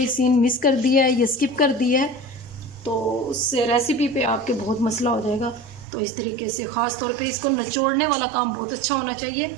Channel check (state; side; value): drops out; left; at 5.9 s